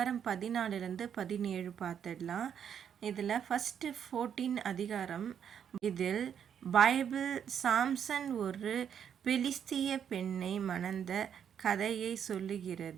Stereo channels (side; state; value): left; quieter; 8.4 dB